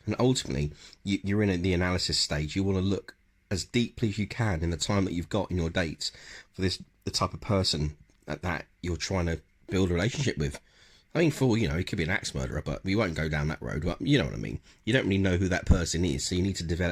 And ultimately, you're in the analysis stage. You want to look as deeply as you can in the time that you've got in your dates for the type of person that you're trying to build a relationship with. I mean, he could be an axe murderer, but we won't go down that road. But you know what I mean. You don't really know who that person is, so you need to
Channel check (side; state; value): both; identical; correlation 1.00